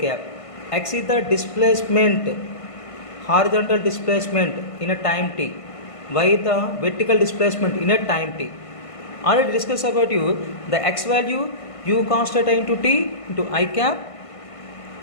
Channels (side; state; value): right; late; 1.5 ms